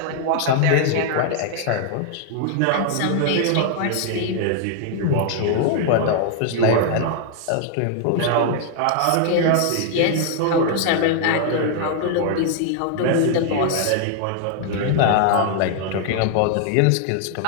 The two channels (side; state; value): both; different; correlation 0.00